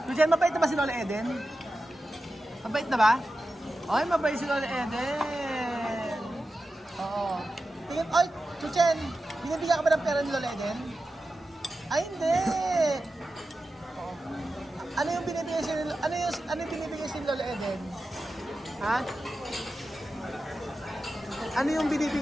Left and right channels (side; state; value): both; normal; correlation 0.92